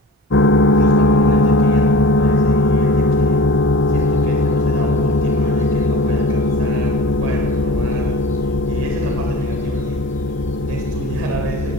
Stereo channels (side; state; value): both; normal; correlation 0.38